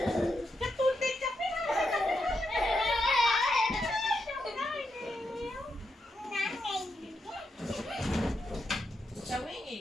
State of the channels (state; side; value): normal; both; correlation 0.84